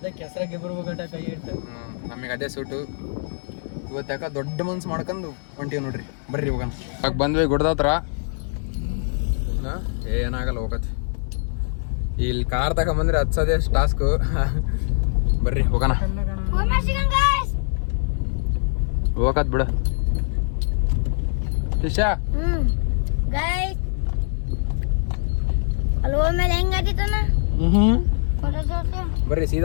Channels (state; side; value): silent; right; digital silence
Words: ಹೆಸರಾಗೆ ಬರ್ಬೇಕಟ ಕೈ ಇಟ್ಟು. ನಮಗೆ ಅದೇ ಸೂಟು. ಇವತ್ತು ಯಾಕೆ ದೊಡ್ಡ ಮನ್ಸು ಮಾಡ್ಕೊಂಡು ಹೊಂಟೀವಿ ನೋಡ್ರಿ. ಬರ್ರಿ ಹೋಗೋಣ. ಇವಾಗ ಬಂದ್ವಿ ಗುಡ್ದ ಹತ್ರ. ಏನಾಗಲ್ಲ, ಹೋಗತ್ತೆ. ಇಲ್ಲಿ ಕಾರ್ ತಗೊಂಬಂದ್ರೆ ಹತ್ಸೋದೇ ಟಾಸ್ಕು. ಬರ್ರಿ ಹೋಗೋಣ. ಹೋಗತ್ ಬಿಡು ಶಿಷ್ಯ. ಬರ್ರಿ